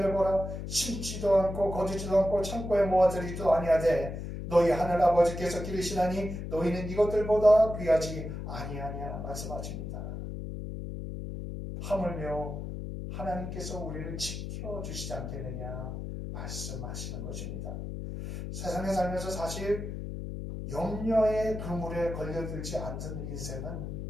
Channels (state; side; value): noise; left; hum, 6 dB below the sound